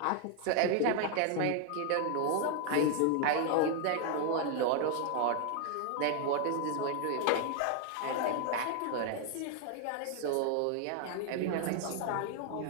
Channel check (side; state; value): both; different; correlation 0.00